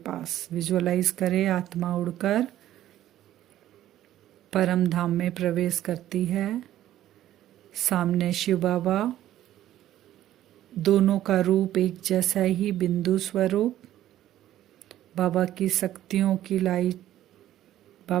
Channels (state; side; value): quieter; left; 12.9 dB